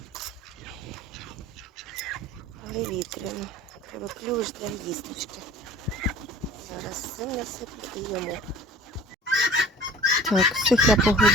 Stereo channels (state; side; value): normal; both; correlation 0.44